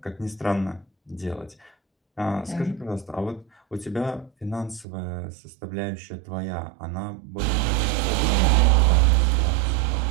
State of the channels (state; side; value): drops out; left; at 4.9 s